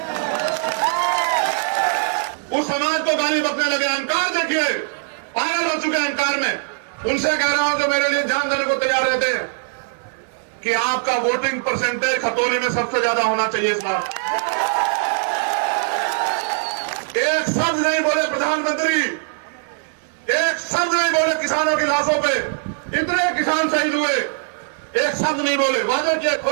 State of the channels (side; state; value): left; silent; digital silence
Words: उस समाज को गाली बकने लगे। अहंकार देखिए, पागल हो चुके हैं अहंकार में। उनसे कह रहा हूं जो मेरे लिए जान देने को तैयार रहते हैं कि आपका वोटिंग परसेंटेज खतौली में सबसे ज्यादा होना चाहिए इस बार। एक शब्द नहीं बोले प्रधानमंत्री, एक शब्द नहीं बोले किसानों की लाशों पे। इतने किसान शहीद हुए, एक शब्द नहीं बोले। वादे किए,